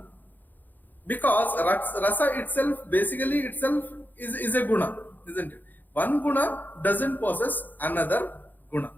because Rasa itself basically is a Guna, isn't it? One Guna doesn't possess another Guna.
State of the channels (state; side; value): late; right; 0.086 ms